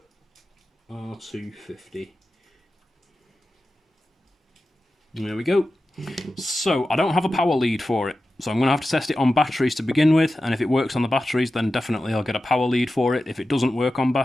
R250. There we go. So I don't have a power lead for it. So I'm going to have to test it on batteries to begin with, and if it works on the batteries, then definitely I'll get a power lead for it. If it doesn't work on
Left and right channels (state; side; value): normal; both; correlation 0.93